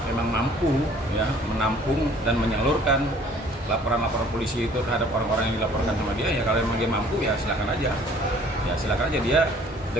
memang mampu ya menampung dan menyalurkan laporan-laporan polisi itu terhadap orang-orang yang dilaporkan sama dia, ya kalau memang dia mampu ya silakan aja. Ya silakan aja dia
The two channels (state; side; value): normal; both; correlation 0.55